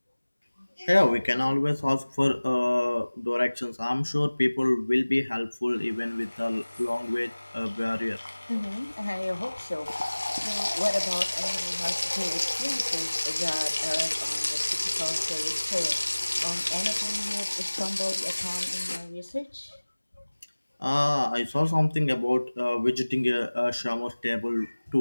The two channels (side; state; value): both; inverted; correlation -1.00